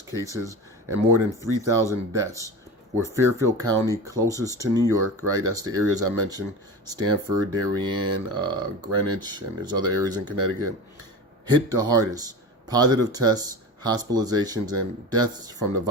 cases and more than 3,000 deaths, where Fairfield County, closest to New York, right, that's the areas I mentioned, Stamford, Darien, Greenwich, and there's other areas in Connecticut, hit the hardest. Positive tests, hospitalizations, and deaths from the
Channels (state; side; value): normal; both; correlation 0.30